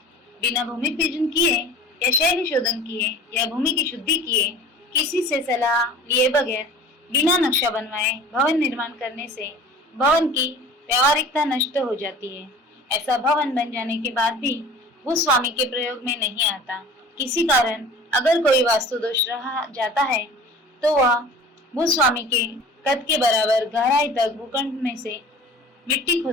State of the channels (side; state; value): both; normal; correlation 0.43